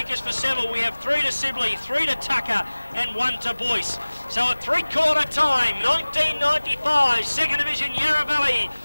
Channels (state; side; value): inverted; both; correlation -1.00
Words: for Seville, we have 3 to Sibley, 3 to Tucker and 1 to Boyce. So at three-quarter time, 1995, Second Division Yarra Valley.